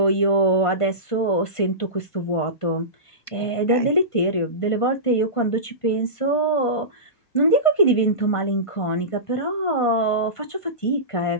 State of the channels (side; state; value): right; late; 1.5 ms